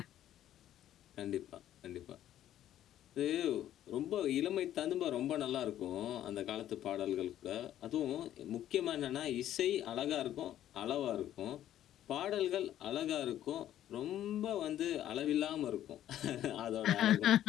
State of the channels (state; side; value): quieter; right; 11.9 dB